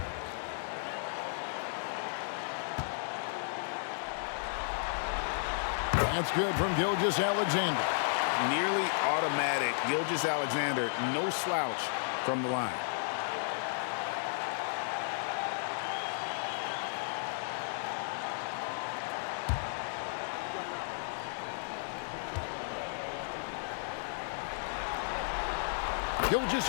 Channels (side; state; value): right; silent; 55 dB below the other